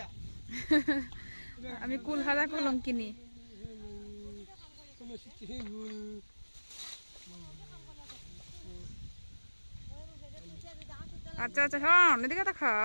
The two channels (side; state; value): both; inverted; correlation -1.00